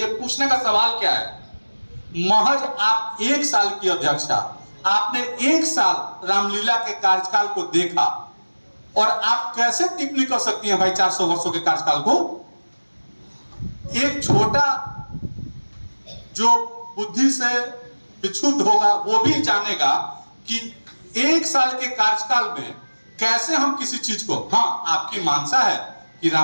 पूछने का सवाल क्या है महज आप 1 साल की अध्यक्षा आपने 1 साल रामलीला के कार्यकाल को देखा और आप कैसे टिप्पणी कर सकती हैं भाई 400 वर्षों के कार्यकाल को। एक छोटा जो बुद्धि से विक्षुब्ध होगा वो भी जानेगा कि 1 साल के कार्यकाल में कैसे हम किसी चीज को हाँ आपकी मानसा है कि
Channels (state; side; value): inverted; both; correlation -1.00